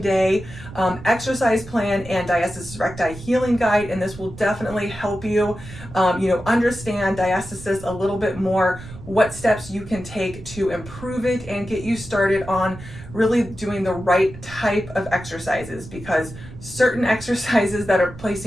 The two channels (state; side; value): noise; right; rumble, 15 dB below the sound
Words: exercise plan and diastasis recti healing guide, and this will definitely help you, understand diastasis a little bit more, what steps you can take to improve it and get you started on really doing the right type of exercises, because certain exercises that are